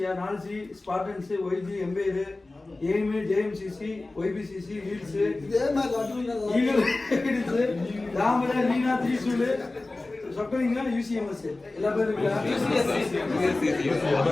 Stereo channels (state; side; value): quieter; right; 3.1 dB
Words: 4C Spartans YG एम्बेयर एम JMCC YBCC Leeds eagle Leeds रामरा लीना त्रिशूल सबको UCMS எல்லா பேரும்